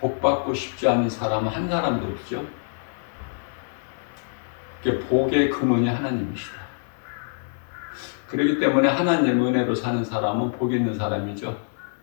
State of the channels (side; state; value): right; silent; 61 dB below the other